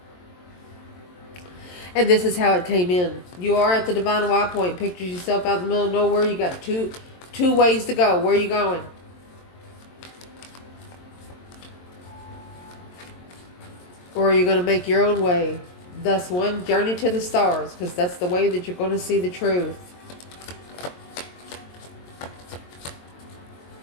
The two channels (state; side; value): late; right; 22 ms